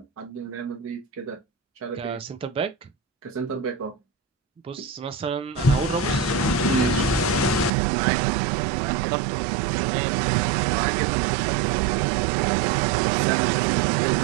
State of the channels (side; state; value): left; drops out; at 7.7 s